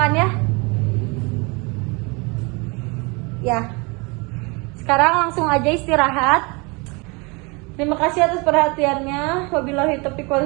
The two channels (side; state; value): left; quieter; 28.8 dB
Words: ya. Ya. Sekarang langsung aja istirahat. Terima kasih atas perhatiannya. Wabillahi taufiq wal